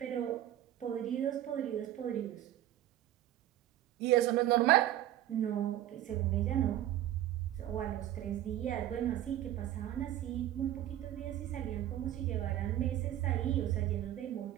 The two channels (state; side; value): quieter; left; 12.9 dB